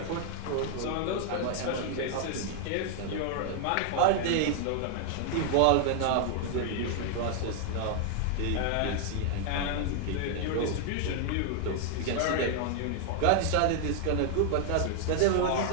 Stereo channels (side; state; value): both; different; correlation 0.00